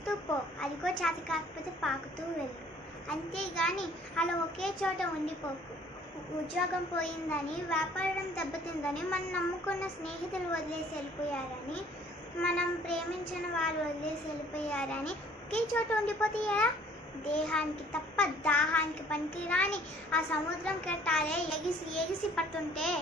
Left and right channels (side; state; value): both; normal; correlation 0.56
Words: పో, అదిగో చేత కాకపోతే పాకుతూ వెళ్ళు. అంతేగాని అలా ఒకే చోట ఉండిపోకు. ఉద్యోగం పోయిందని, వ్యాపారం దెబ్బతిందని, మనం నమ్ముకున్న స్నేహితులు వదిలేసి వెళ్ళిపోయారని, మనం ప్రేమించిన వాళ్ళు వదిలేసి వెళ్ళిపోయారని ఒకే చోట ఉండిపోతే ఎలా? దేహానికి తప్ప దాహానికి పనికిరాని ఆ సముద్రం కెట్టాలే ఎగిసి ఎగిసి పడుతుంటే